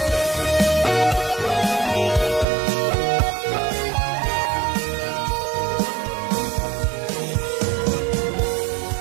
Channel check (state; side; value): drops out; left; at 2.5 s